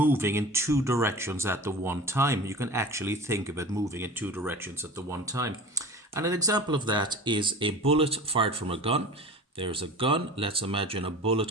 in two directions at the one time. You can actually think of it moving in two directions at the one time. And an example of that is a bullet fired from a gun. There's a gun. Let's imagine a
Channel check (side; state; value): both; normal; correlation 0.37